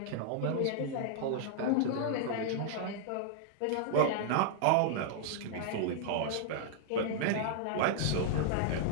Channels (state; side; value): different; both; correlation -0.01